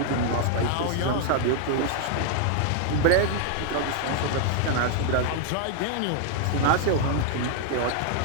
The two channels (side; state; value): both; different; correlation 0.00